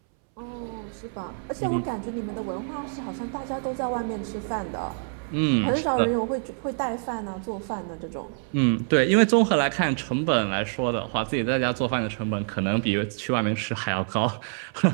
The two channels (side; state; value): left; silent; 61 dB below the other